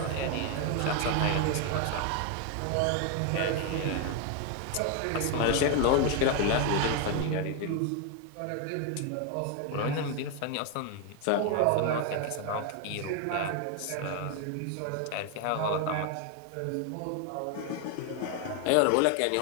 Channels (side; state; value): both; different; correlation 0.01